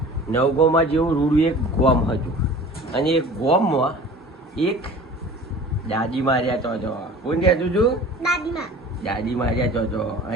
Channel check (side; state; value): both; normal; correlation 0.42